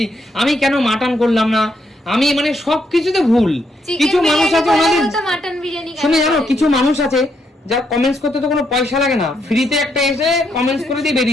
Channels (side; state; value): both; normal; correlation 0.77